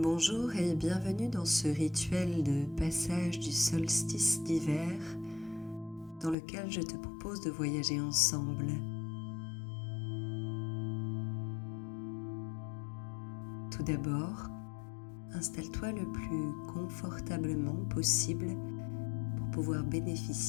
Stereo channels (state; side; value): drops out; right; at 6.4 s